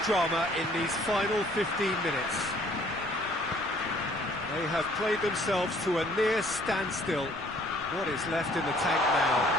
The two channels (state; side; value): noise; left; rumble, 20 dB below the sound